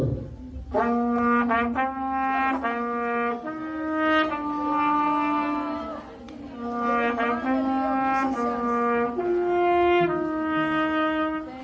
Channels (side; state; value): both; identical; correlation 1.00